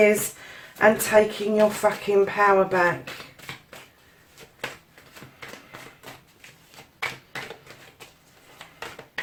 and taking your fucking power back.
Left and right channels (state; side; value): identical; both; correlation 1.00